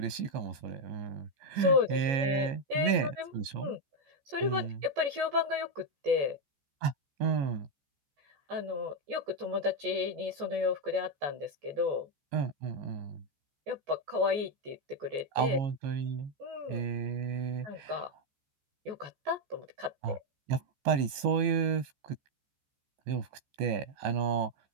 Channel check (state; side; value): late; left; 15 ms